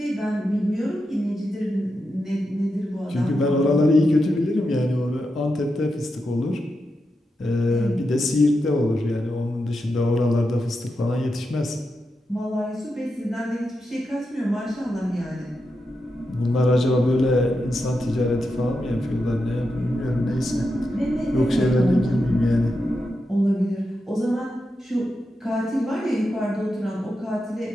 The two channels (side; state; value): both; normal; correlation 0.87